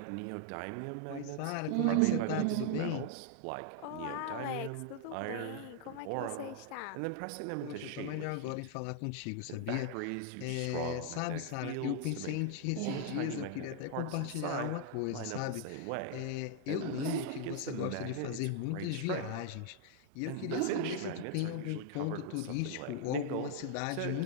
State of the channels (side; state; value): both; different; correlation 0.00